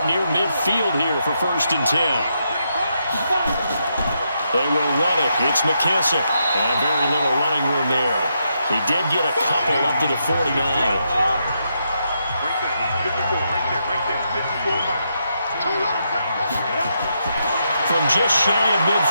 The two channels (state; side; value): inverted; both; correlation -0.81